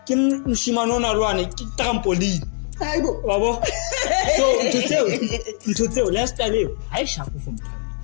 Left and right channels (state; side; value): silent; right; digital silence